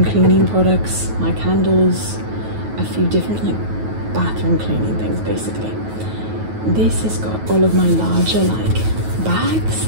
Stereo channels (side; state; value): left; late; 9.3 ms